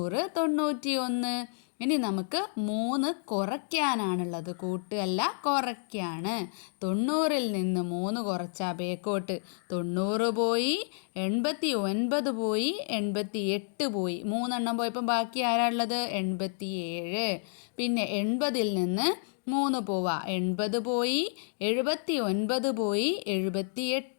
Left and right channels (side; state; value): right; silent; digital silence